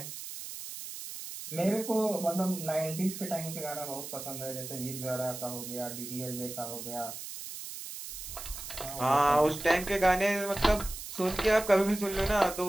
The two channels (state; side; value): noise; right; hiss, 9 dB below the sound